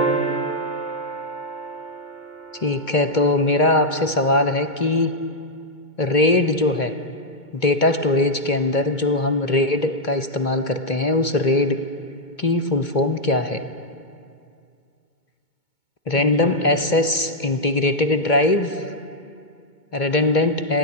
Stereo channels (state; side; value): late; right; 2.2 ms